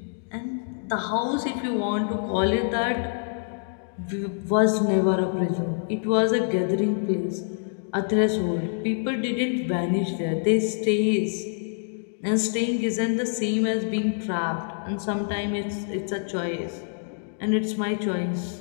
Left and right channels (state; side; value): silent; right; digital silence